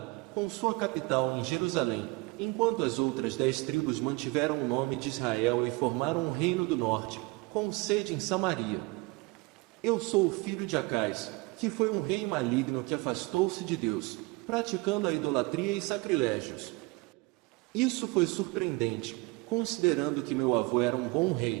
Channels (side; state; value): left; quieter; 25.1 dB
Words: com sua capital em Jerusalém, enquanto as outras 10 tribos mantiveram o nome de Israel e formaram o reino do norte, com sede em Samaria. Eu sou o filho de Acais, que foi um rei maligno que afastou-se de Deus, praticando a idolatria e sacrilégios. Isso foi surpreendente, considerando que meu avô era um bom